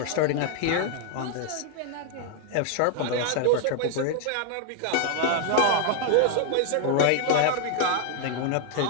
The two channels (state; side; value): different; both; correlation 0.00